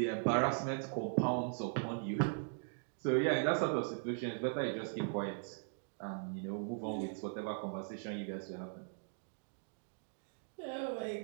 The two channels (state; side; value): silent; left; digital silence